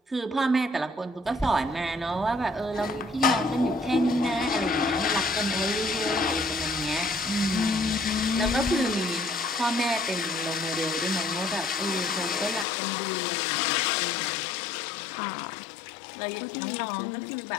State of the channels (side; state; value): right; drops out; at 12.7 s